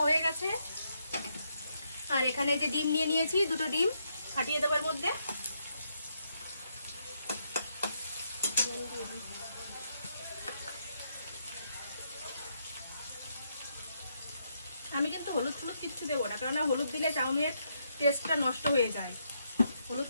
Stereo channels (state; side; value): inverted; both; correlation -0.78